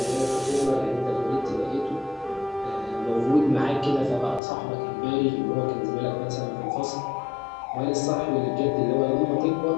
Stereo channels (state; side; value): drops out; right; at 4.4 s